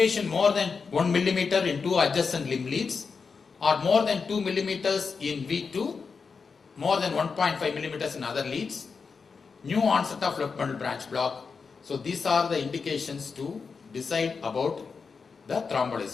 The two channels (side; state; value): right; quieter; 5.2 dB